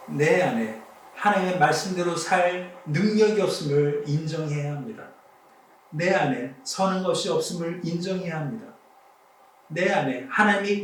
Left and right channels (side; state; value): both; identical; correlation 1.00